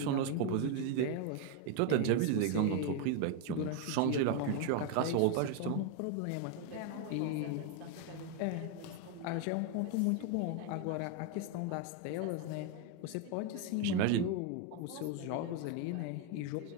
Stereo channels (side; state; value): both; different; correlation 0.01